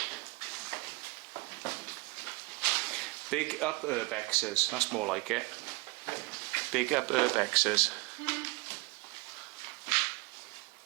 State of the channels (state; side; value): quieter; left; 25.2 dB